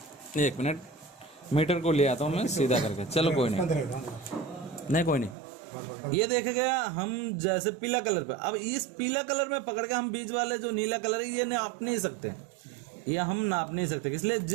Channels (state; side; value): drops out; left; at 5.4 s